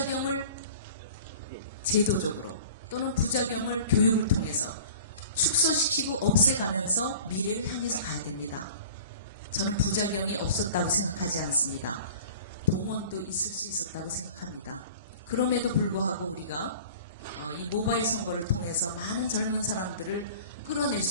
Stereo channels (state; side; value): inverted; both; correlation -0.43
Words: 제도적으로 또는 부작용을 교육을 통해서 축소시키고 없애가면서 미래를 향해서 가야 됩니다. 저는 부작용이 없었다고 생각하지 않습니다. 동원도 있을 수 있었다고 생각합니다. 그럼에도 불구하고 우리가 이 모바일 선거를 통해서 많은 젊은 사람들을 끌어낼